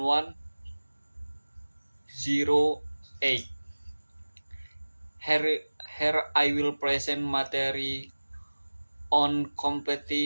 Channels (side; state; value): both; inverted; correlation -1.00